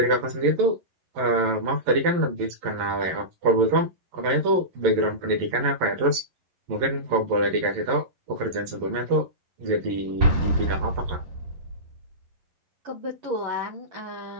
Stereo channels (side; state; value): left; late; 11 ms